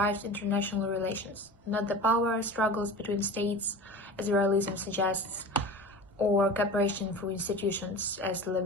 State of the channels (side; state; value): both; normal; correlation 0.34